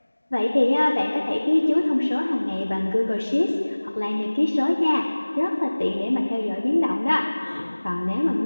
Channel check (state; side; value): inverted; both; correlation -1.00